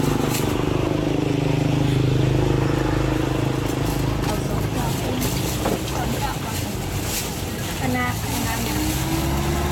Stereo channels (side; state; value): both; identical; correlation 1.00